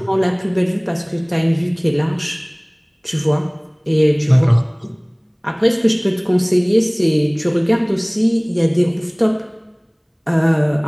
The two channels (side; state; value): both; identical; correlation 1.00